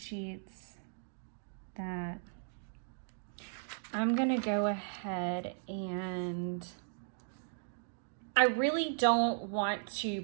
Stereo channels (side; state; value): left; silent; digital silence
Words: that. I'm gonna go ahead and I really don't want to